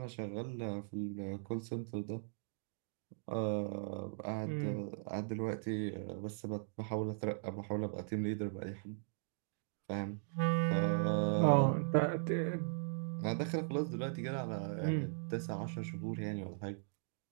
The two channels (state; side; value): silent; left; digital silence